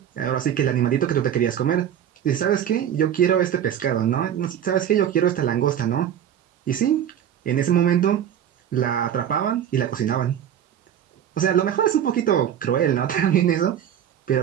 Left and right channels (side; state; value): left; quieter; 9.8 dB